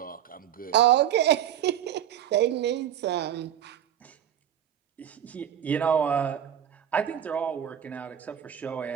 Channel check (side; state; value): left; quieter; 10.2 dB